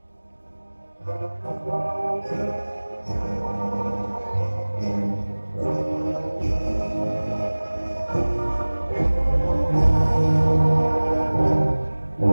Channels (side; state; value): both; inverted; correlation -1.00